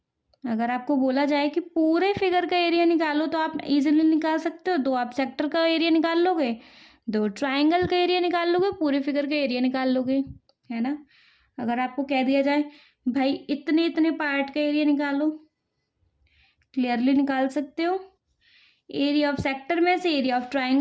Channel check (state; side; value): identical; both; correlation 1.00